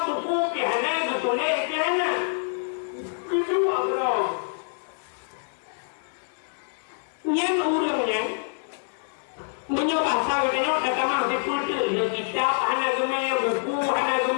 Ditulis ke mana? Kedua bro. Yang urangnya menyoba saya tengok datang masih pultu dia kitab hana gemai buku hana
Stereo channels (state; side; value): silent; right; digital silence